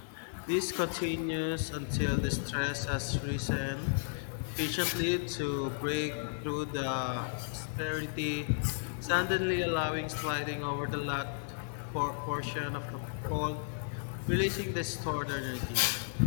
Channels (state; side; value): silent; right; digital silence